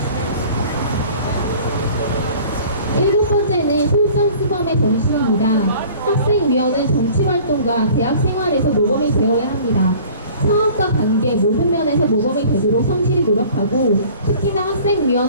7번째는 솔선수범의 정신입니다. 학생위원은 정치활동과 대학 생활에서 모범이 되어야 합니다. 사업과 관계 모든 면에서 모범이 되도록 성실히 노력하고, 특히나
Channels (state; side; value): inverted; both; correlation -0.48